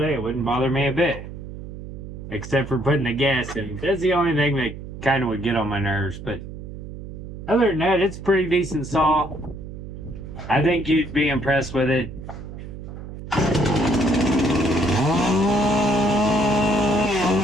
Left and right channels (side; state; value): right; noise; hum, 11 dB below the sound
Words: It wouldn't bother me a bit, except for putting the gas in. That's the only thing that kind of would get on my nerves. But other than that, it's a pretty decent saw. I think you'd be impressed with it. I